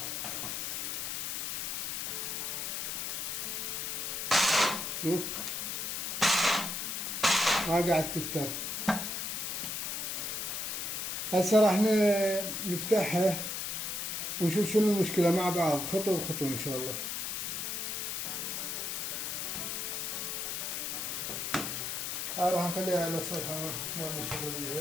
شوف ما قاعد تفتر. هسه راح نفتحها ونشوف شنو المشكلة مع بعض، خطوة بخطوة إن شاء الله. هاي راح نخليها على الصفحة، ما نشغل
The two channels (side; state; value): left; noise; hiss, 2 dB below the sound